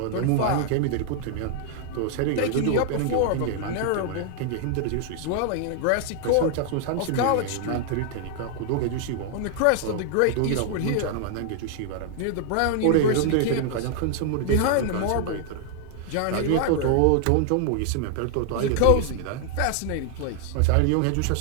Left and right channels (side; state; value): both; different; correlation 0.00